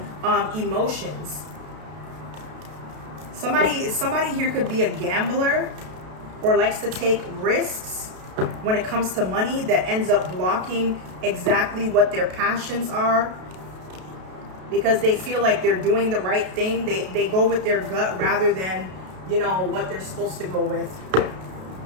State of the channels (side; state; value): left; late; 32 ms